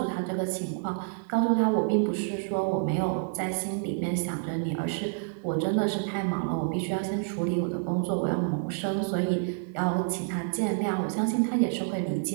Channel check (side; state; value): left; silent; digital silence